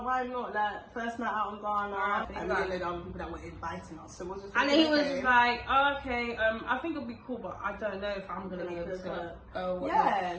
why not? Like first night out in Ghana, and we like, didn't know other people that were inviting us. So we're just. And like, then he was okay. just like, oh, okay, I think it'll be cool, but I don't know if I'm gonna be able to go.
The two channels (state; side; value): identical; both; correlation 1.00